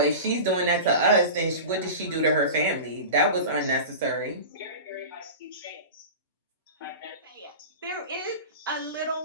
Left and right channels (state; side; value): inverted; both; correlation -0.31